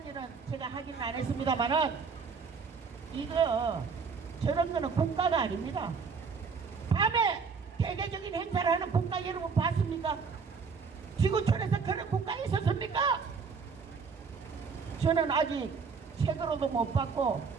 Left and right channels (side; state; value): left; quieter; 5.4 dB